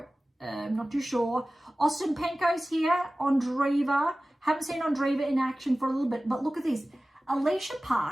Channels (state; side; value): normal; both; correlation 0.97